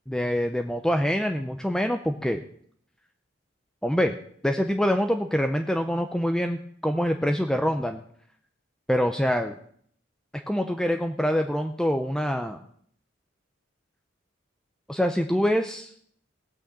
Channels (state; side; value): normal; both; correlation 0.92